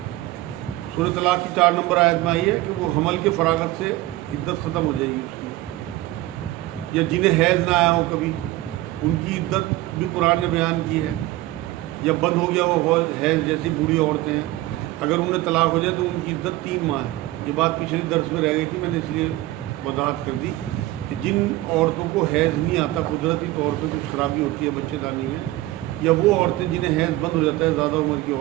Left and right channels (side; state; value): left; quieter; 17.2 dB